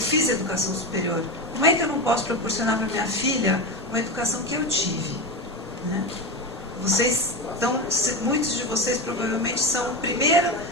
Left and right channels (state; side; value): normal; both; correlation 0.18